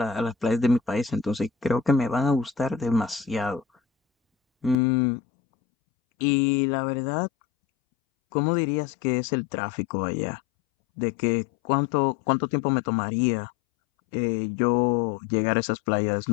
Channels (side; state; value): right; drops out; at 4.8 s